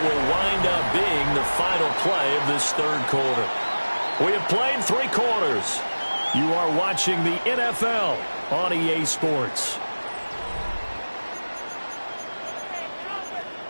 will wind up being the final play of this third quarter. We have played 3 quarters. You are watching the NFL on EA Sports.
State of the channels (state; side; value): inverted; both; correlation -1.00